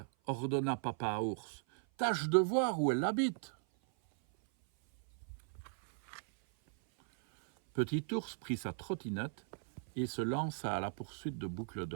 !» ordonna papa ours. « Tâche de voir où elle habite. » Petit ours prit sa trottinette et se lança à la poursuite de Boucle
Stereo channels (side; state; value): left; silent; 53 dB below the other